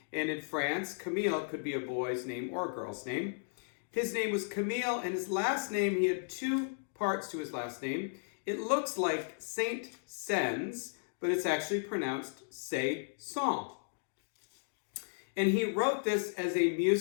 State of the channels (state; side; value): silent; right; digital silence